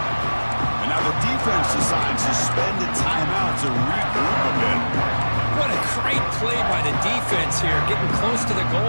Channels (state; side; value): inverted; both; correlation -1.00